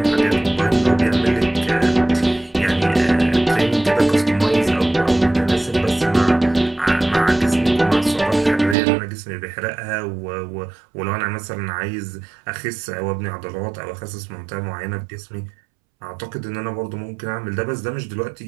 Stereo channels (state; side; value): drops out; left; at 8.8 s